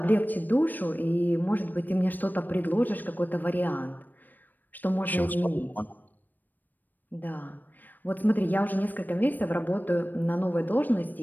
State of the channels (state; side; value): late; right; 0.088 ms